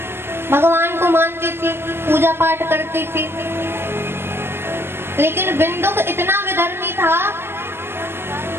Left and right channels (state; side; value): late; left; 0.11 ms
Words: भगवान को मानती थी, पूजा पाठ करती थी। लेकिन बिंदुक इतना विधर्मी था